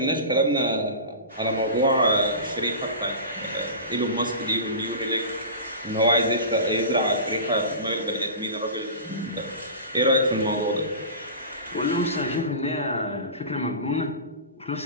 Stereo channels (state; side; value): inverted; both; correlation -0.31